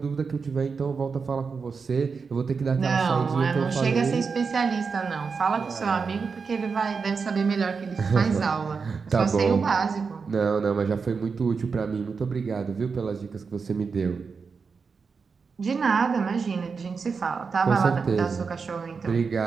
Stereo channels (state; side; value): quieter; left; 5.2 dB